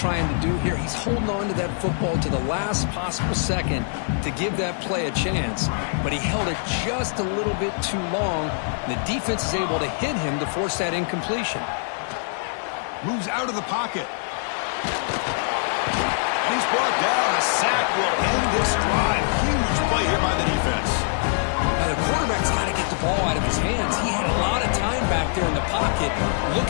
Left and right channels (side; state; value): right; silent; 63 dB below the other